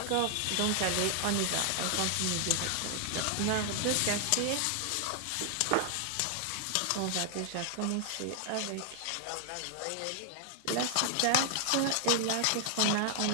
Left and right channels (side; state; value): both; different; correlation 0.00